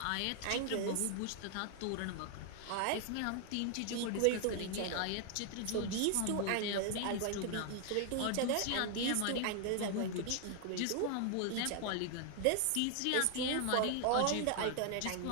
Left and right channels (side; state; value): both; different; correlation 0.00